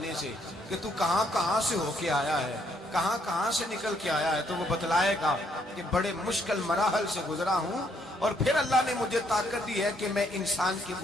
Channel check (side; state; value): both; normal; correlation 0.70